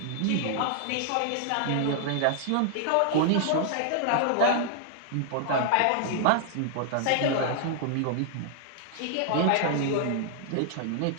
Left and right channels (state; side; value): different; both; correlation -0.01